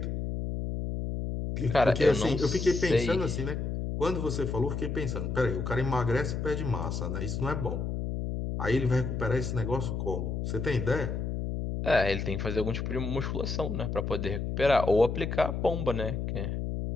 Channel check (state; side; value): noise; left; hum, 3 dB below the sound